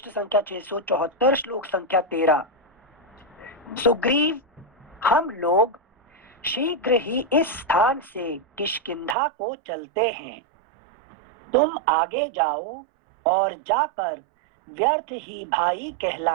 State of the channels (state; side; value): drops out; left; at 9.2 s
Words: संख्या 674, श्लोक संख्या 13। सुग्रीव, हम लोग शीघ्र ही इस स्थान से किष्किंधा को चलते हैं। तुम आगे जाओ और जाकर व्यर्थ ही भाई